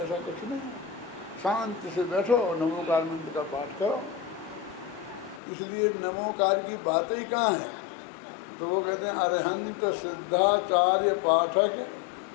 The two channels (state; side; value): drops out; right; at 5.4 s